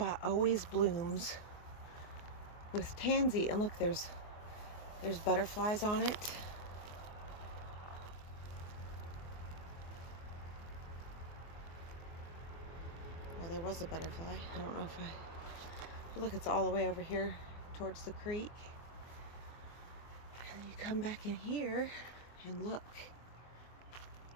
always blooms with tansy, and look, there's butterflies on it. Well, there was a butterfly. I don't know if but look, it's all the way over here towards the creek. And you come back in here and look.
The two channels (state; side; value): late; right; 24 ms